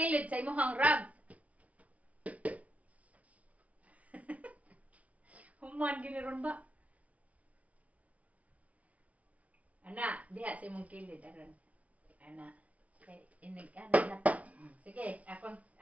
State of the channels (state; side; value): late; left; 0.068 ms